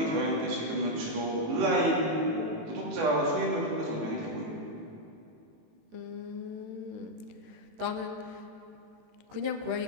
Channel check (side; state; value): left; late; 18 ms